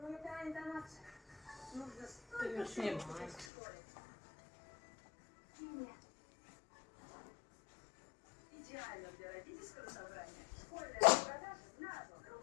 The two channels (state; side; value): drops out; right; at 3.5 s